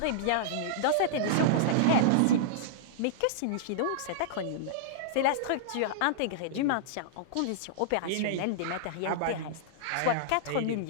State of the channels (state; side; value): different; both; correlation -0.02